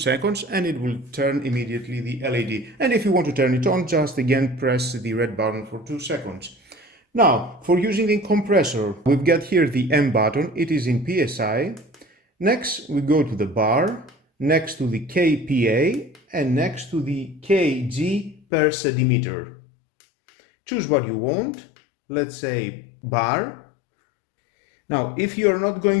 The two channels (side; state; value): right; drops out; at 18.4 s